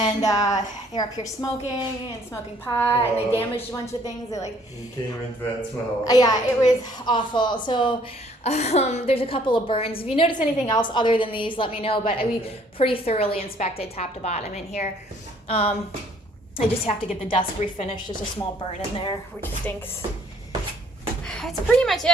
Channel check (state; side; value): normal; both; correlation 0.61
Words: they're up here smoking and smoking pot, and they damaged a bunch of things. They like. You came into that smell. Yeah, it was awful. So there's a couple of burns. If you notice anything else other than these, let me know. But we pretty thoroughly inspected top to bottom in here. I just have to get the desk refinished. There's a small burn in there, which stinks. That's pretty much